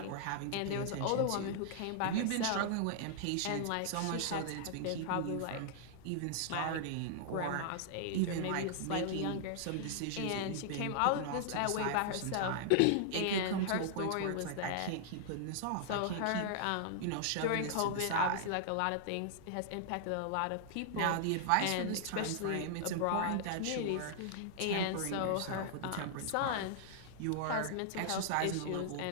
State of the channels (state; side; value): different; both; correlation -0.01